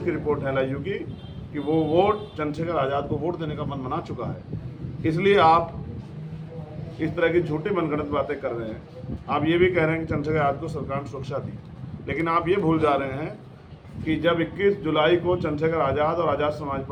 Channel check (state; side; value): identical; both; correlation 1.00